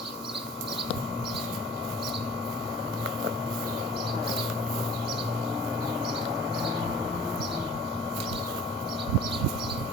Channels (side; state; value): both; normal; correlation 0.46